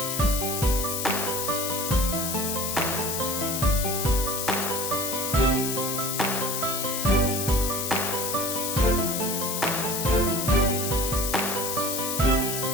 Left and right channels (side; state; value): left; noise; hiss, 2 dB below the sound